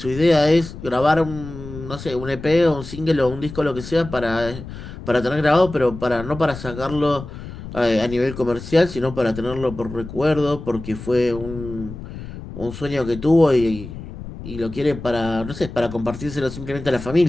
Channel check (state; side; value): noise; left; rumble, 12 dB below the sound